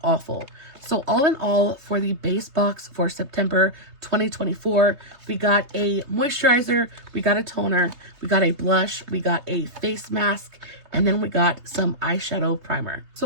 awful. So all in all, for the base box for September 2024, we got a moisturizer, we got a toner, we got a blush, we got a face mask, and then we got some eyeshadow primer.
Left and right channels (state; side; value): late; left; 3.2 ms